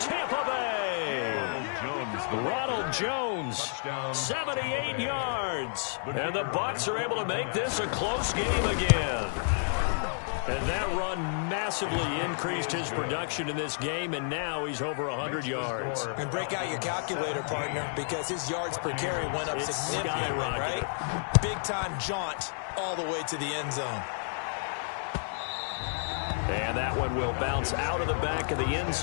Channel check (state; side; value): silent; right; digital silence